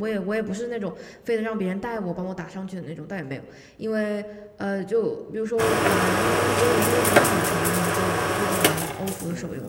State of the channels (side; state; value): both; identical; correlation 1.00